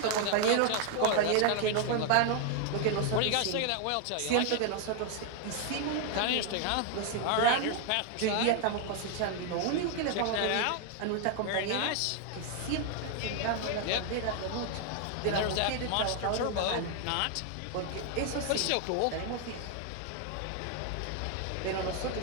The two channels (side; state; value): both; different; correlation 0.00